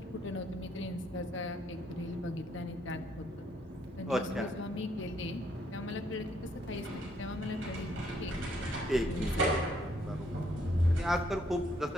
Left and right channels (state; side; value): normal; both; correlation 0.69